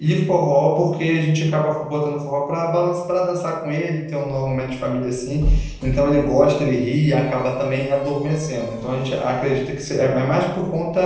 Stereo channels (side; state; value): both; identical; correlation 1.00